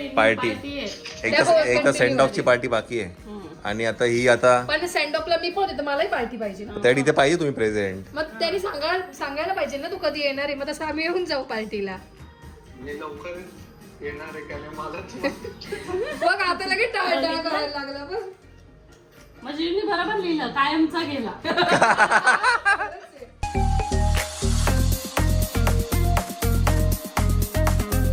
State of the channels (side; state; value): both; identical; correlation 1.00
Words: पार्टी party आहे एक तर सेंड ऑफची पार्टी बाकी आहे आणि आता ही आता पण सेंड ऑफला मी पण होते तर मलाही पार्टी पाहिजे ना. त्या इथे पाहिजे तुम्ही प्रेझेंट. मग त्यांनी सांगायला पाहिजे ना तू कधी येणार आहे. मग तसं आम्ही येऊन जाऊ पार्टीला. मी लवकर येणार आहे का नाही मला बघ आता लगेच टाळटाळ करायला लागला बघ. म्हणजे मी बरोबर लिहिलं कायमचा गेला